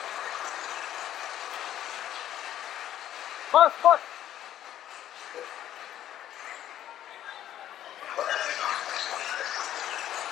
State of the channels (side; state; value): right; quieter; 11.8 dB